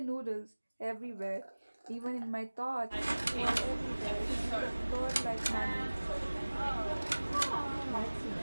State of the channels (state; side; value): inverted; both; correlation -1.00